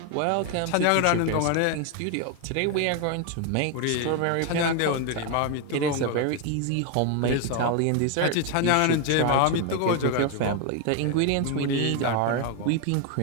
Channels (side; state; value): both; different; correlation 0.01